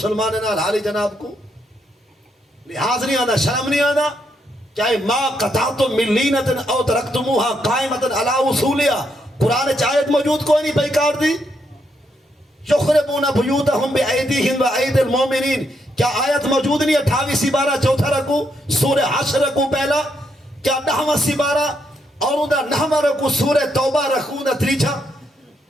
نال حالی جناب کو لحاظ نہیں آنا شرم نہیں آنا. چاہے ما قطعتم من لینتن او ترکتموها قائمتن علی اصولیا قرآن چاہت موجود کوئی نہیں بیکار دی. یخربون بیوتہم بأیدیہم وأید المومنین کیا آیت موجود نہیں 28 سپارہ چوتھا رکو سورہ حشر رکو پہلا کیا 9واں سپارہ اور اندھا 9واں رکو سورہ توبہ رکو اندھا تریچھا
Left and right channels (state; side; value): normal; both; correlation 0.77